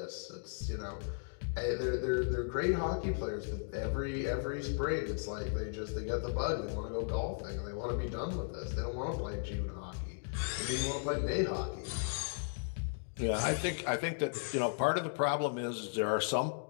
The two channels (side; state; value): right; silent; digital silence